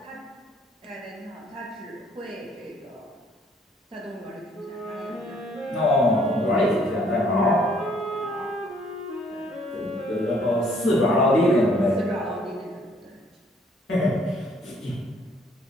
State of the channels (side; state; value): both; normal; correlation 0.63